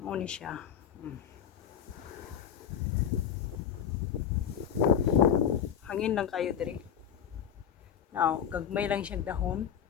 ni siya. Hangin lang kayo diri. Now, gagmay lang siya dahon.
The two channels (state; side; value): quieter; right; 8.6 dB